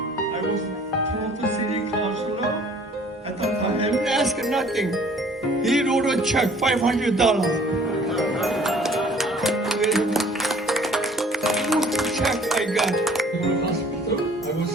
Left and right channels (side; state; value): both; normal; correlation 0.54